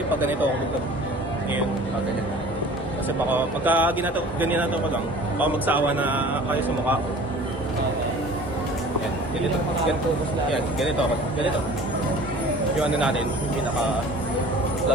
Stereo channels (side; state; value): both; normal; correlation 0.45